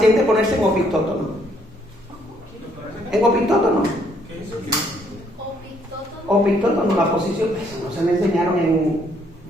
ponerse en opitótono. ¿En opitótono? Opitótono, la posición, eso no se me enseñaron en...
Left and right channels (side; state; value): both; normal; correlation 0.68